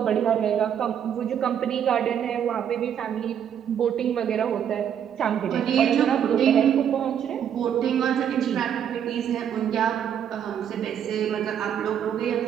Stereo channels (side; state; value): left; quieter; 8.9 dB